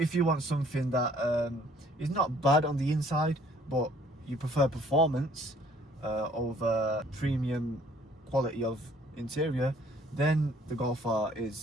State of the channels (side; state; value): both; normal; correlation 0.59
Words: you want something that is not bad on the inside, but you prefer performance over premium quality of interior, then the Golf R